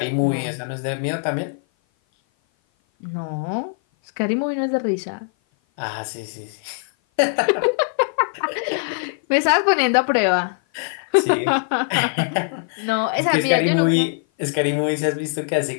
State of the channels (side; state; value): right; silent; 56 dB below the other